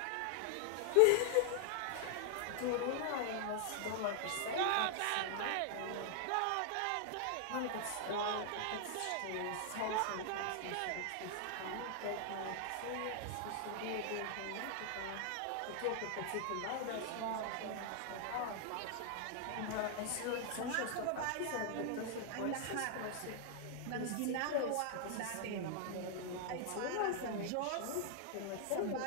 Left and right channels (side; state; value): both; different; correlation 0.00